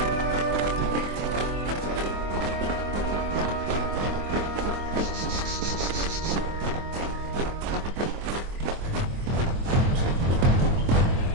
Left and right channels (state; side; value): late; left; 24 ms